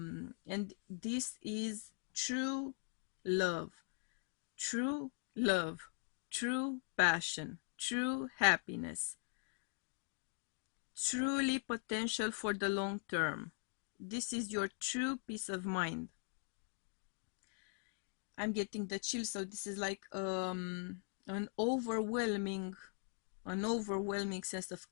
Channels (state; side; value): silent; right; 50 dB below the other